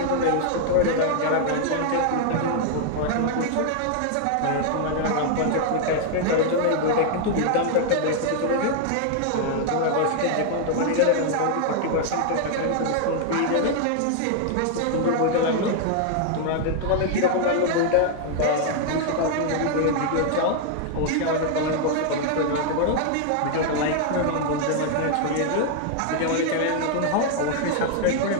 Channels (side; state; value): both; different; correlation 0.00